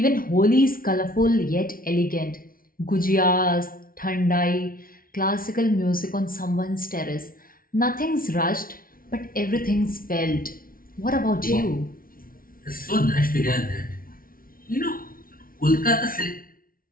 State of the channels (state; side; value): late; right; 0.42 ms